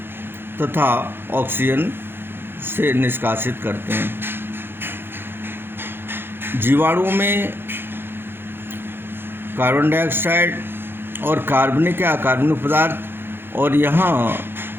तथा ऑक्सीजन से निष्कासित करते हैं। जीवाणुओं में कार्बन डाइऑक्साइड और कार्बनिक या अकार्बनिक पदार्थ और यहाँ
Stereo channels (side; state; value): left; late; 0.10 ms